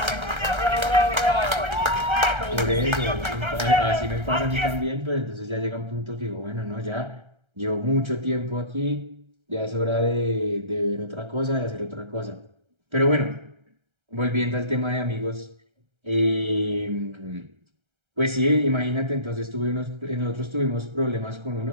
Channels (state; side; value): late; left; 1.3 ms